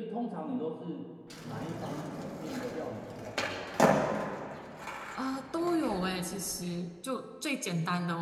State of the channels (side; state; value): both; identical; correlation 1.00